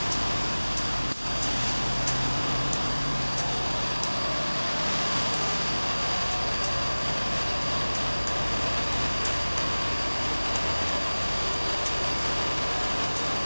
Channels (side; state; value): both; inverted; correlation -1.00